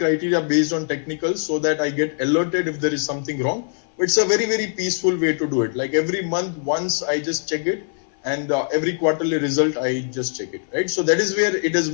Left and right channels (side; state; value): right; silent; 59 dB below the other